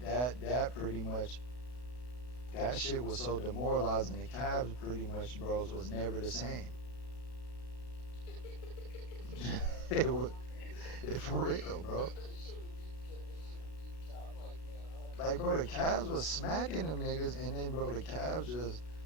that pretty much that shit was so demoralizing. The Cavs pretty much, bros, was never the same. it was for real, bro. Like, bro, the Cavs was smacking them niggas, and then, bro, the Cavs just,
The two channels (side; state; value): right; late; 32 ms